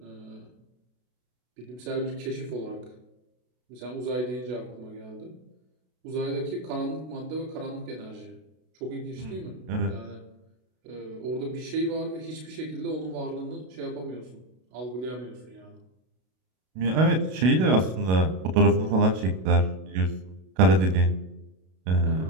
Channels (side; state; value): left; late; 32 ms